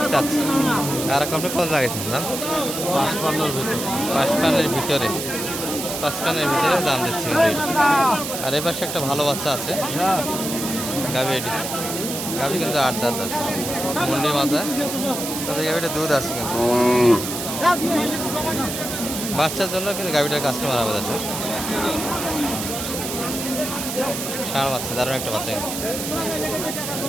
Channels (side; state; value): right; noise; hiss, 5 dB below the sound